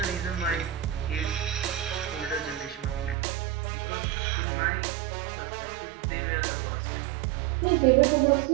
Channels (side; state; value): left; drops out; at 3.2 s